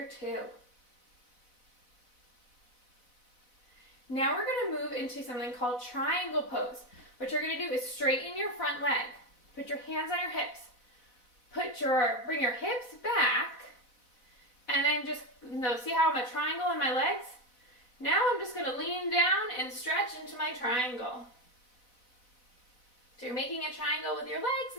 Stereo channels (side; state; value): right; late; 4.0 ms